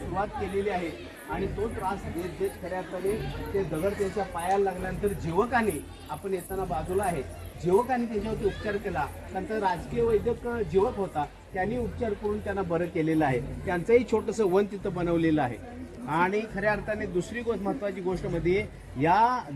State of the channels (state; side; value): identical; both; correlation 1.00